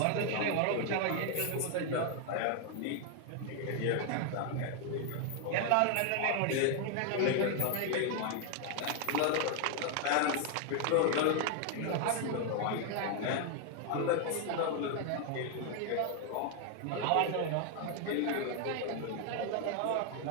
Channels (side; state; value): both; different; correlation 0.00